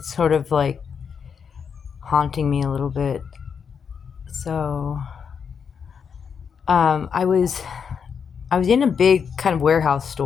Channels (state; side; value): quieter; right; 6.7 dB